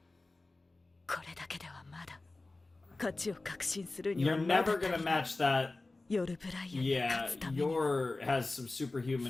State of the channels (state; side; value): quieter; right; 3.2 dB